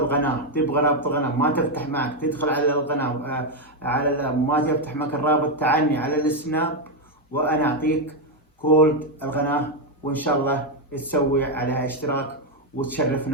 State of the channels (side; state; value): both; normal; correlation 0.03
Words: ما تفتح معك تدخل على القناه، ما تفتح معك الرابط، تعني على السناب وانا اعطيك كود القناه، وان شاء الله تسوي عليها اشتراك